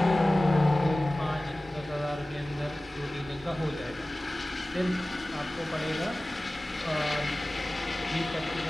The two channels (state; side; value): normal; both; correlation 0.97